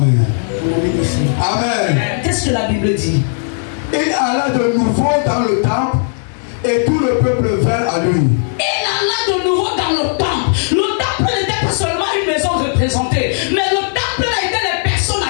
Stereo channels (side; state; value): right; silent; digital silence